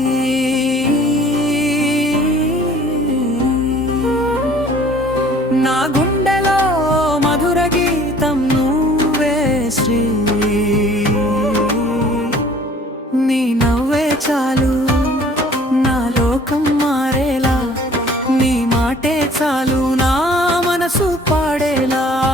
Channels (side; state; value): both; normal; correlation 0.52